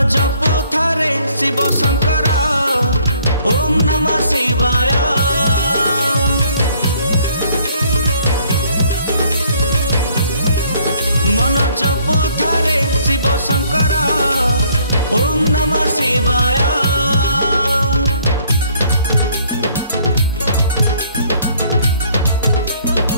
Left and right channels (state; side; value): inverted; both; correlation -0.62